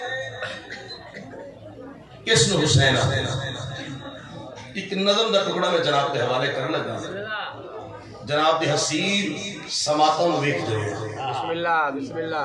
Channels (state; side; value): identical; both; correlation 1.00